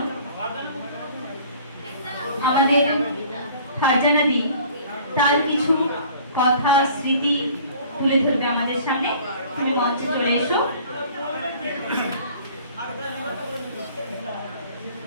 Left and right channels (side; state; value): both; inverted; correlation -0.50